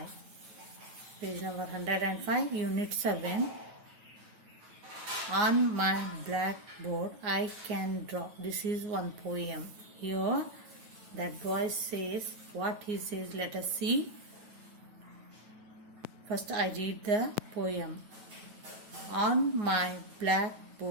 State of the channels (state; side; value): late; left; 9.2 ms